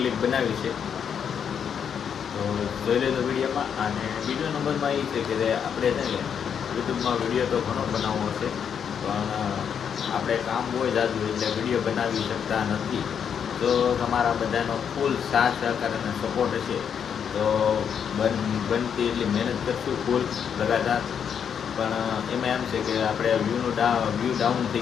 બનાવી છે, તો જોઈ લેજો વિડીયોમાં. અને બીજો નંબરમાં એ છે કે આપણે છે ને યુટ્યુબમાં વિડીયો તો ઘણો બનાવવો છે, પણ આપણે કામ હોય જાજુ એટલે વિડીયો બનાવી શકતા નથી. તો તમારા બધાનો ફૂલ સાથ સહકાર અને સપોર્ટ હશે તો બનતી એટલી મહેનત કરશું ફૂલ લગાતાર. પણ એમાં એમ છે કે આપણે વ્યૂ ડાઉન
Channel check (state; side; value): quieter; right; 7.7 dB